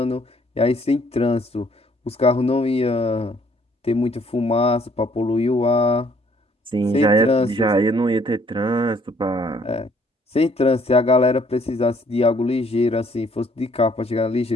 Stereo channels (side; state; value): both; normal; correlation 0.63